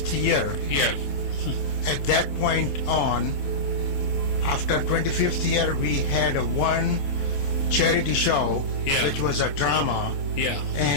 year, at that point on, after 25th year, we had one charity show, which was a drama,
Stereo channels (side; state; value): right; late; 27 ms